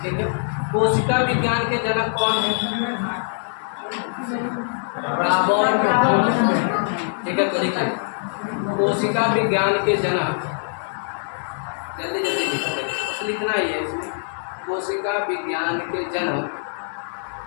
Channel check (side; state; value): right; silent; 63 dB below the other